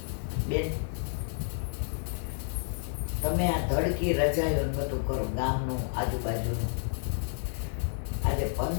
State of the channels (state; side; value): silent; right; digital silence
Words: બેન તમે આ ધડકી રજાયો ને બધું કરો ગામનું આજુબાજુનું આજે